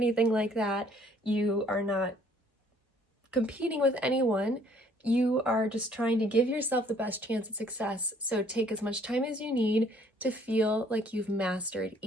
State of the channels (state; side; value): normal; both; correlation 0.61